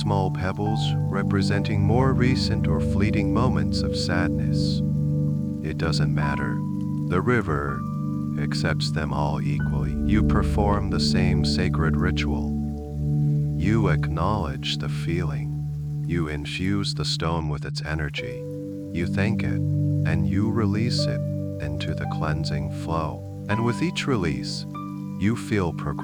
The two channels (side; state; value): both; identical; correlation 1.00